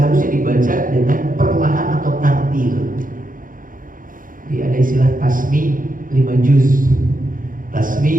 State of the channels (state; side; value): late; left; 0.40 ms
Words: dibaca dengan perlahan atau tartil. Jadi ada istilah tasmi 5 juz,